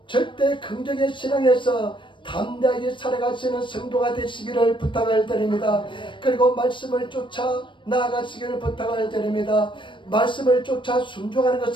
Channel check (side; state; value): right; late; 0.24 ms